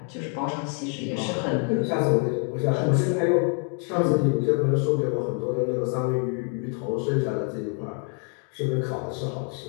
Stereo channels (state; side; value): quieter; right; 39.9 dB